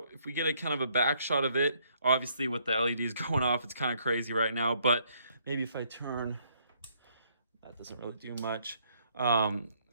If we get a kind of a back shot of it, obviously with the LEDs going off, it's kind of crazy right now, but maybe if I turn, that doesn't really do much.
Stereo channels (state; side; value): inverted; both; correlation -0.68